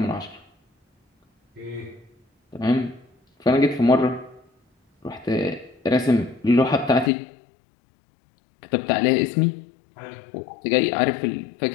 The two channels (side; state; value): right; drops out; at 7.1 s